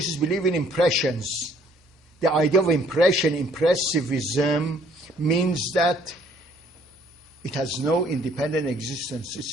believe in impressions. The idea of impression, impressivism, means that it has no independent existence.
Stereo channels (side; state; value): both; normal; correlation 0.61